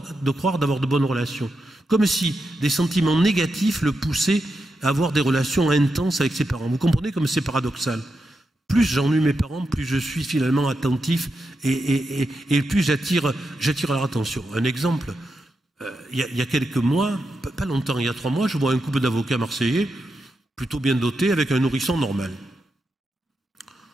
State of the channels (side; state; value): both; normal; correlation 0.86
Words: d'avoir de bonnes relations. Comme si des sentiments négatifs le poussaient à avoir des relations intenses avec ses parents. Vous comprenez comme c'est paradoxal? Plus j'ennuie mes parents, plus je suis finalement attentif et plus j'attire leur attention. Un exemple, il y a quelques mois, pas longtemps, il y a 3 mois, je vois un couple d'avocats marseillais, plutôt bien dotés, avec un nourrisson normal.